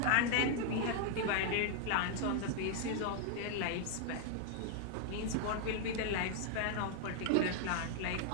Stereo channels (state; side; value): different; both; correlation 0.00